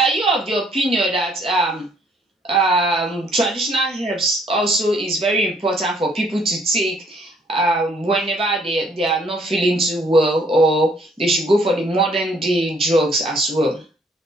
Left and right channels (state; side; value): normal; both; correlation 0.64